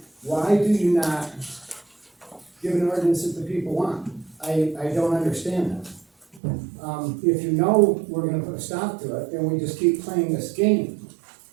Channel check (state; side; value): drops out; left; at 6.4 s